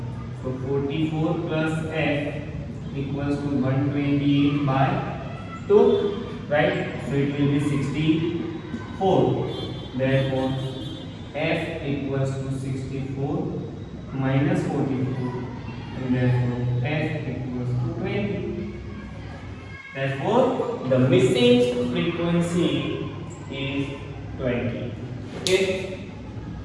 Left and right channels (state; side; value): identical; both; correlation 1.00